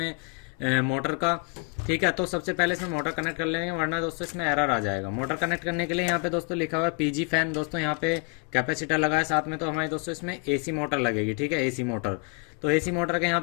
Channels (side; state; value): right; quieter; 34.4 dB